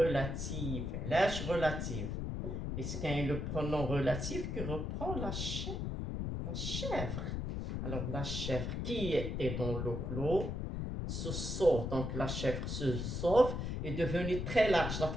L'âge relative. Est-ce qu'il y a le pronom relatif qui reprend la chèvre? Alors, la chèvre qui était dans le clos se sauve. Donc, la chèvre se sauve est devenue très large. La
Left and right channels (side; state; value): left; noise; rumble, 3 dB below the sound